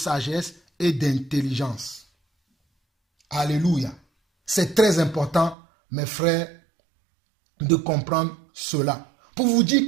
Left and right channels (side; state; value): left; drops out; at 5.6 s